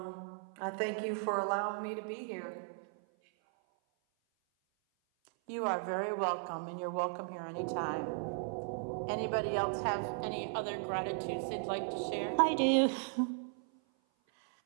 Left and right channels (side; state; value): left; silent; 54 dB below the other